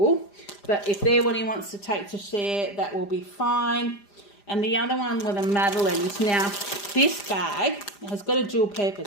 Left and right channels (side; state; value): right; late; 5.0 ms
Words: But if they're what he wants to take to share, that will be fine. And the other one were the Madeleines. Now, this bag has got a dual